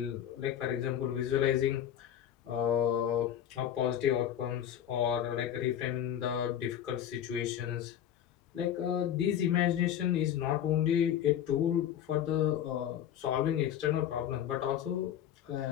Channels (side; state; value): right; quieter; 10.2 dB